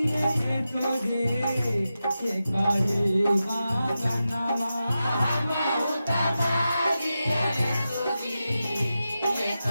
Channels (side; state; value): both; inverted; correlation -0.91